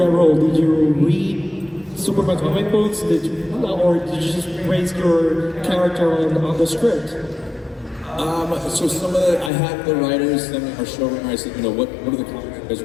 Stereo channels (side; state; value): right; drops out; at 9.5 s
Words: role? Did you read Superman comic books? Or did you just base your character on the script? So some of I had the writers send me our showrunner. I said, you know, what are the comics you guys